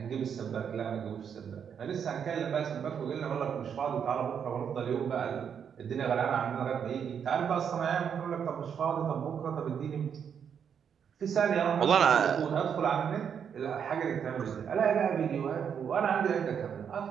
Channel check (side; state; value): left; quieter; 7.7 dB